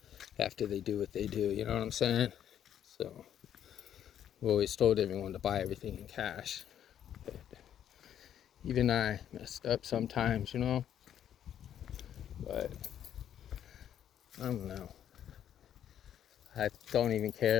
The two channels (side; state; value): right; quieter; 10.0 dB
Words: after they do what they do, you know what I'm saying? So, we always told everyone to buy everything in cash. But even I messed up sometimes, you know? But I don't know. I don't even